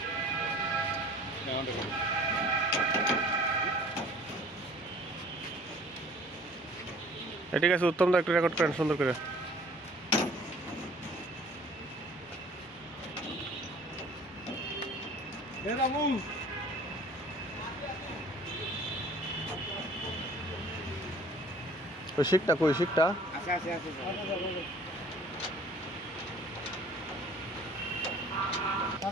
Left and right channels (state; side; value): normal; both; correlation 0.51